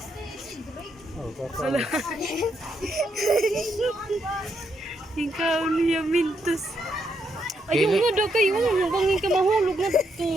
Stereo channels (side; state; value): both; normal; correlation 0.78